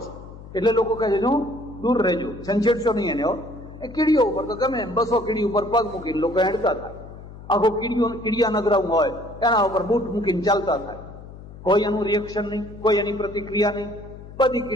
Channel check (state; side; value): noise; left; hum, 16 dB below the sound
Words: છે. એટલે લોકો કહે છે દૂર રહેજો, છંછેડશો નહીં એને. એ કીડીઓ ઉપર તો ગમે એમ 200 કીડી ઉપર પગ મૂકીને લોકો હેડતા થાય. આખો કીડિયા નગરાઉ હોય એના ઉપર બૂટ મૂકીને ચાલતા થાય. કોઈ એનું રિએક્શન નહીં, કોઈ એની પ્રતિક્રિયા નહીં. બધી